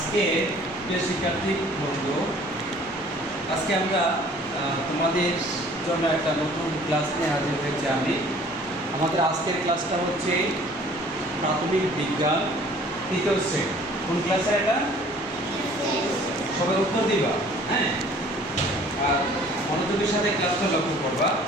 প্রিয় শিক্ষার্থী বন্ধু, আজকে আমরা তোমাদের জন্য একটা নতুন ক্লাস নিয়ে হাজির হয়েছি। আমাদের আজকের ক্লাসটা হচ্ছে প্রাথমিক বিজ্ঞান তৃতীয় শ্রেণী। কোন ক্লাসে এটা? সবাই উত্তর দিবা, হ্যাঁ, আর মনোযোগের সাথে ক্লাসটা লক্ষ্য করবা।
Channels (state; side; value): normal; both; correlation 0.53